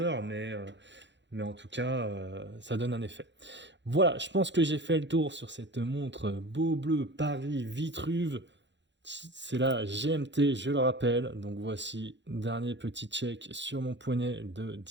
mais en tout cas, ça donne un effet. Voilà, je pense que j'ai fait le tour sur cette montre Beaubleu Paris Vitruve. C'est la GMT, je le rappelle. Donc voici, dernier petit check sur mon poignet de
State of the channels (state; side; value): late; left; 0.52 ms